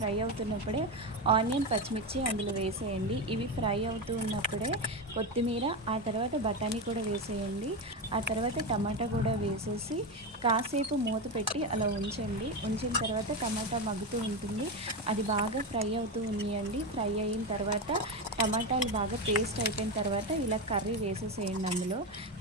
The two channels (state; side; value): normal; both; correlation 0.14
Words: అవుతున్నప్పుడే ఆనియన్, పచ్చిమిర్చి అందులో వేసేయండి. ఇవి ఫ్రై అవుతూ ఉన్నప్పుడే కొత్తిమీర, ఆ తర్వాత బఠానీ కూడా వేసేయండి. ఆ తర్వాత టమాటా కూడా వేసేసి కాసేపు మూత పెట్టి అలా ఉంచండి. ఉంచిన తర్వాత టమాటా మగ్గుతూ ఉంటుంది. అది బాగా ఫ్రై అవుతూ ఉన్నాయండి. ఫ్రై అయిన తర్వాత టమాటాలు బాగా పేస్ట్ అయిపోయిన తర్వాత ఇలా కర్రీ వేసేసేయండి. అందులో